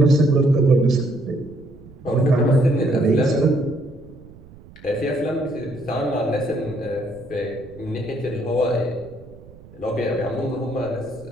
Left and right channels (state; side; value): noise; right; rumble, 21 dB below the sound